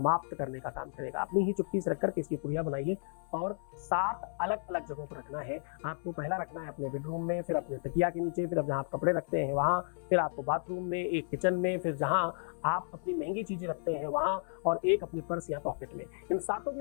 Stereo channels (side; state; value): right; silent; 56 dB below the other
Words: करने का काम करेगा। अपनी ही चुटकी से रख करके इसकी पुड़िया बनाइए और 7 अलग अलग जगहों पर रखना है। आपको पहला रखना है अपने बेडरूम में, फिर अपने तकिया के नीचे, फिर अब जहाँ आप कपड़े रखते हैं वहाँ, फिर आपको बाथरूम में, एक किचन में, फिर जहाँ आप अपनी महंगी चीजें रखते हैं वहाँ, और एक अपने पर्स या पॉकेट में। इन सातों